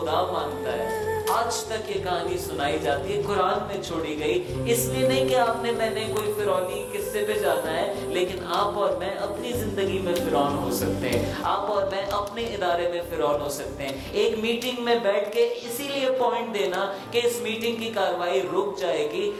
مانتا ہے. آج تک یہ کہانی سنائی جاتی ہے, قرآن میں چھوڑی گئی. اس لیے نہیں کہ آپ نے میں نے کوئی فرعونی قصے پہ جانا ہے, لیکن آپ اور میں اپنی زندگی میں فرعون ہو سکتے ہیں. آپ اور میں اپنے ادارے میں فرعون ہو سکتے ہیں. ایک میٹنگ میں بیٹھ کے اسی لیے پوائنٹ دینا کہ اس میٹنگ کی کاروائی رک جائے گی,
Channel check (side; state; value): both; identical; correlation 1.00